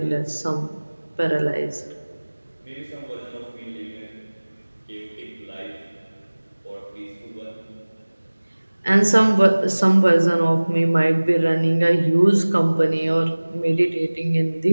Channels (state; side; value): inverted; both; correlation -1.00